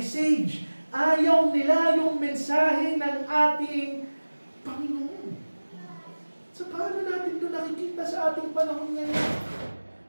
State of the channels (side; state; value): both; inverted; correlation -1.00